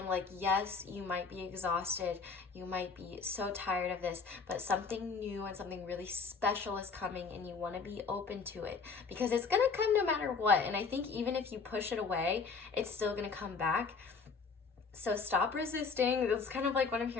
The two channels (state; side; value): quieter; right; 5.0 dB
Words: like, yes, you might be exhausted, you might be so tired of this, but something new and something really special is coming, and you want to be open to it, because it's going to come no matter what. And I think even if you push it away, it's still going to come back. So stop resisting. That's kind of like what I'm